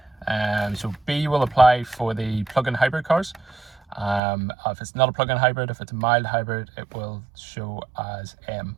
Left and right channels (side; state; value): left; drops out; at 4.2 s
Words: So B will apply for the plug-in hybrid cars. If it's not a plug-in hybrid, if it's a mild hybrid, it will show as M,